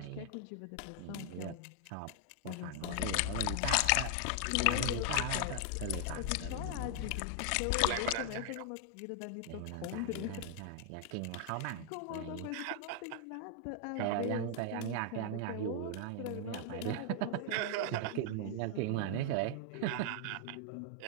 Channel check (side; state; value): both; different; correlation 0.00